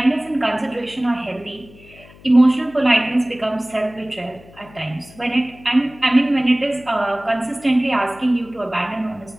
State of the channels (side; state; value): left; noise; hum, 23 dB below the sound